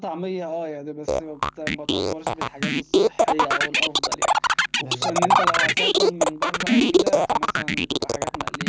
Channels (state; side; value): identical; both; correlation 1.00